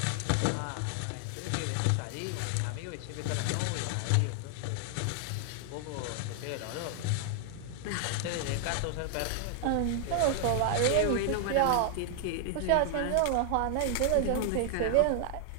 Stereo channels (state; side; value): different; both; correlation 0.00